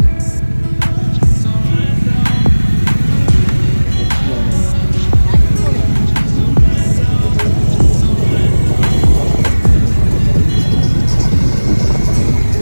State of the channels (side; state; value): both; inverted; correlation -1.00